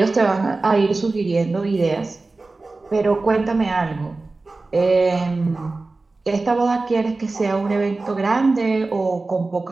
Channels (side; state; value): left; quieter; 3.5 dB